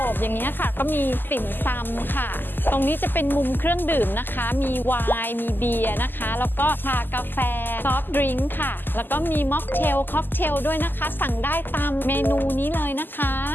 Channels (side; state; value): right; late; 0.091 ms